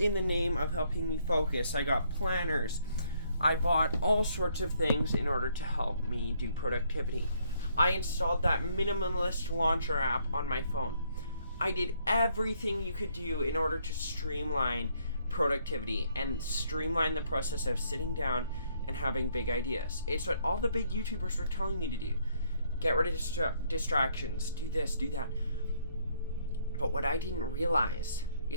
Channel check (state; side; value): inverted; both; correlation -0.69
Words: the name of helping me focus. I got planners. I bought all sorts of things in order to help me do productivity. I installed that minimalist launcher app on my phone. I did everything you could do in order to streamline productivity and streamline the process of sitting down and having big ideas. It's what all the big YouTubers were telling me to do. Get rid of distractions, do this, do that. But what I didn't realize